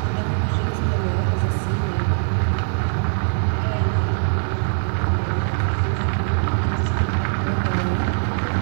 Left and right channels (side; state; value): left; silent; digital silence